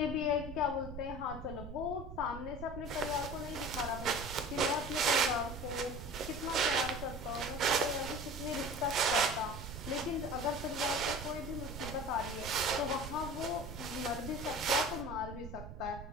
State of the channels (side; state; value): right; noise; rumble, 10 dB below the sound